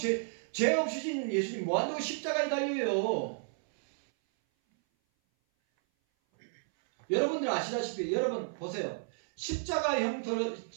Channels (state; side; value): silent; left; 56 dB below the other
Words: 없으신 예수님 뭐한다고 십자가에 달려요? 여러분들 아시다시피, 여러분 보세요. 십자가